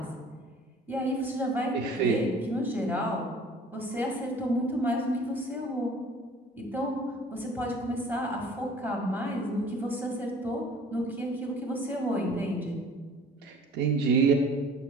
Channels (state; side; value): normal; both; correlation 0.49